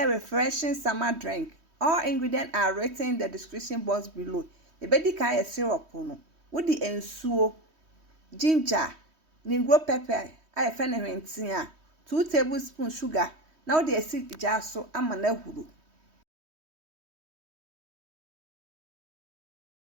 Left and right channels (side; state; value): left; late; 3.1 ms